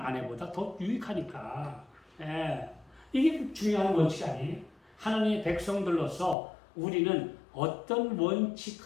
더 유익하니까. 이게 중요한 원칙 아니에요? 하나님의 백성들로서 우리는 어떤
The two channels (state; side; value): drops out; right; at 6.4 s